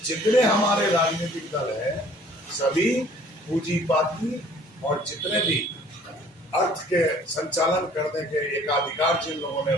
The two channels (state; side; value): normal; both; correlation 0.54